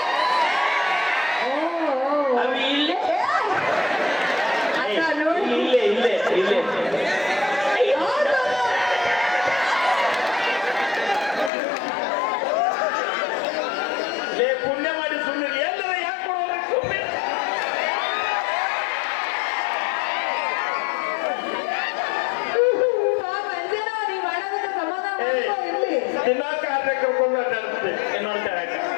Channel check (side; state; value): right; drops out; at 11.5 s